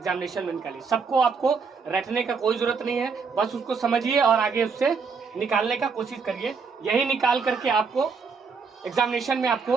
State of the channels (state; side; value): quieter; left; 5.3 dB